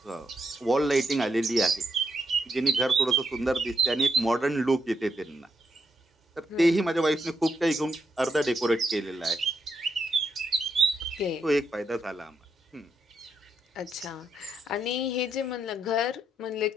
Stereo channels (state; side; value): normal; both; correlation 0.79